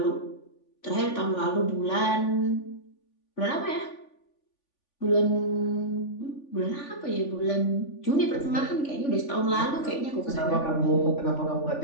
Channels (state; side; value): late; right; 3.5 ms